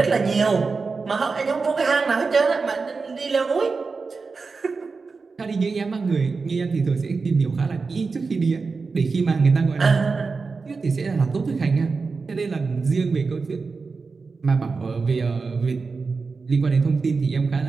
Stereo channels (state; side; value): quieter; left; 4.5 dB